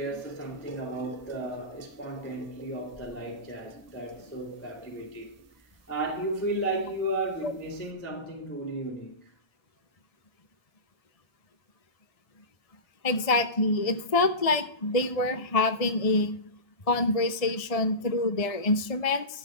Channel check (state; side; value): late; right; 1.6 ms